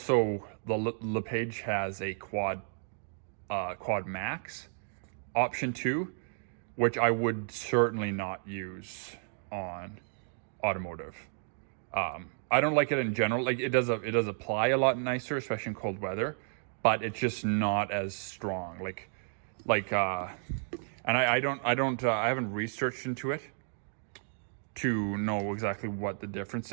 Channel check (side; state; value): left; silent; digital silence